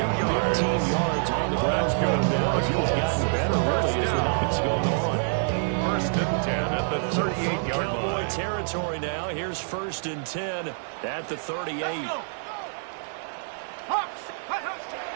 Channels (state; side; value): silent; left; digital silence